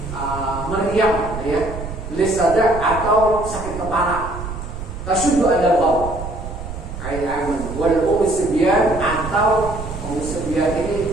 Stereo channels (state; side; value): noise; right; rumble, 9 dB below the sound